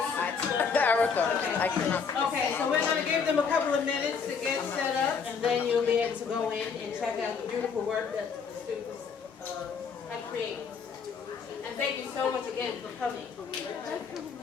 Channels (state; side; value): quieter; right; 5.8 dB